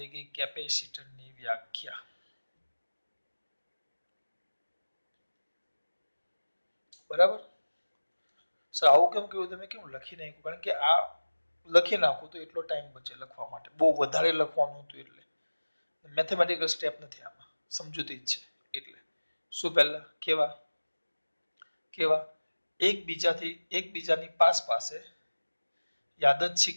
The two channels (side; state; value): both; inverted; correlation -1.00